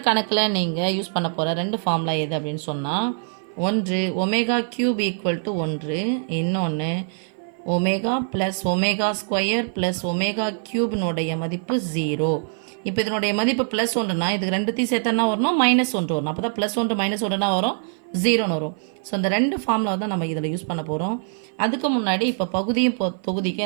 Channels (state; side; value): silent; left; 55 dB below the other